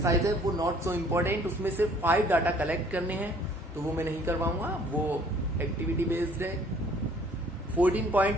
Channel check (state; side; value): normal; both; correlation 0.57